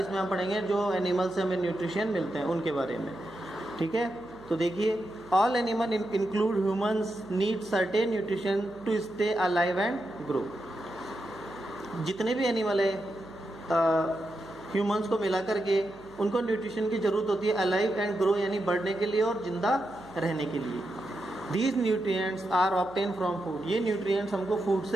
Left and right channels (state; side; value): noise; right; hum, 21 dB below the sound